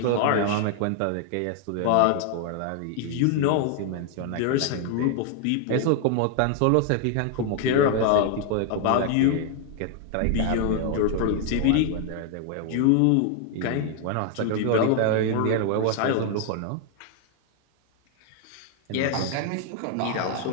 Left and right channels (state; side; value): different; both; correlation 0.00